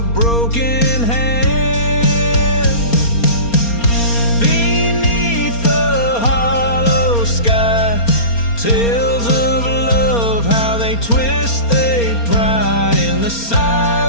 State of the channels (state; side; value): late; right; 4.3 ms